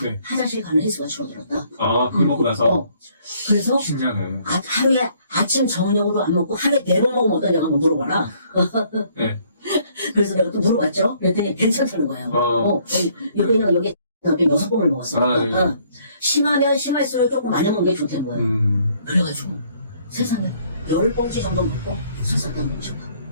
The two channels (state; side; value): inverted; both; correlation -0.64